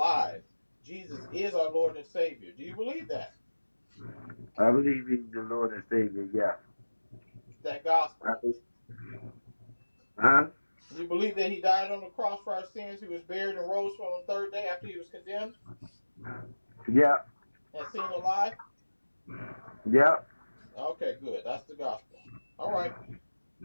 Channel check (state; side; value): inverted; both; correlation -1.00